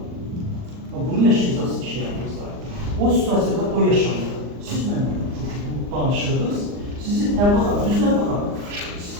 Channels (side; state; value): left; late; 39 ms